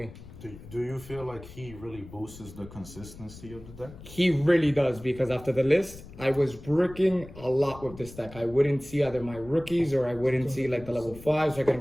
Do you feel like he really boosts the consistency of the deck? He really does, because after the list, I was bricking a lot with this deck. I wouldn't see either my rookies, or I wouldn't see like the level 5s, so I couldn't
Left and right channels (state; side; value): noise; left; rumble, 17 dB below the sound